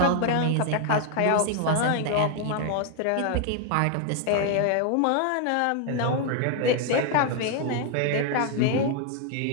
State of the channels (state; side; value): different; both; correlation 0.00